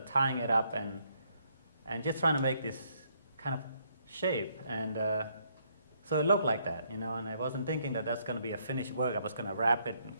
tying it up and just trying to make this kind of shape, and so it looked like that, and I wasn't thinking that that's going to be a finished work. I was going to wrap it and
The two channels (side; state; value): both; inverted; correlation -0.70